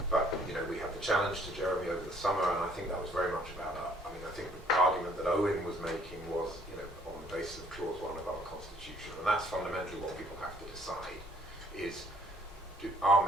But you know, we had the challenge to Jeremy over the summer, and I think that was very much about I think the argument that Owen was making was, you know, on the basis of clause 1 of our constitution, and that's fundamentally what people have to decide. Is our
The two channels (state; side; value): normal; both; correlation 0.61